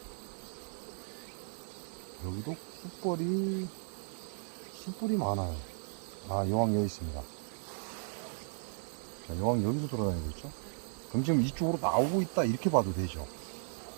여기도 숯불이 많아요. 여왕 여기 있습니다. 자, 여왕 여기서 돌아다니고 있죠. 그럼 지금 이쪽으로 나오고 있다 이렇게 봐도 되죠.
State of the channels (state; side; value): silent; left; digital silence